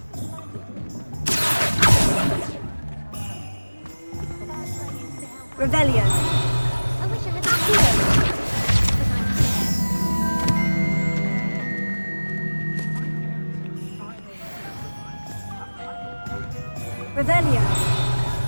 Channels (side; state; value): both; inverted; correlation -1.00